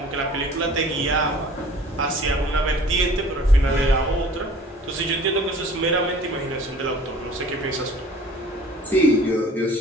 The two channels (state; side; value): normal; both; correlation 0.48